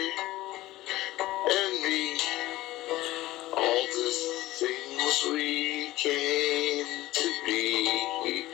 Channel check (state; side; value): quieter; right; 17.0 dB